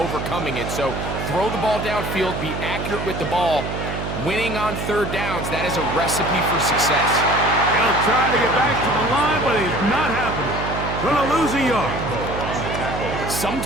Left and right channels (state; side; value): noise; right; hum, 5 dB below the sound